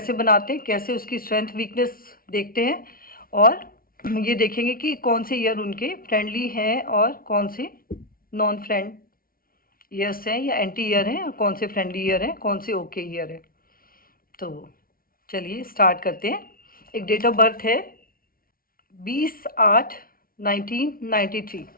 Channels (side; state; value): right; late; 0.43 ms